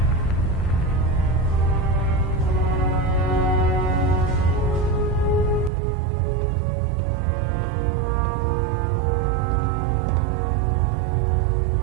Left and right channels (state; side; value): drops out; left; at 5.7 s